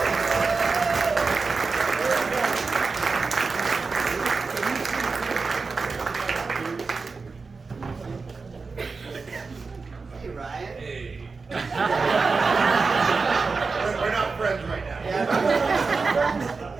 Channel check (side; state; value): left; quieter; 4.4 dB